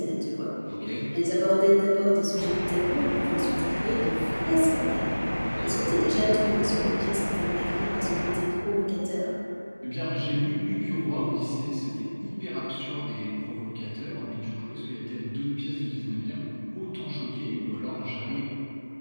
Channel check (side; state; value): both; inverted; correlation -1.00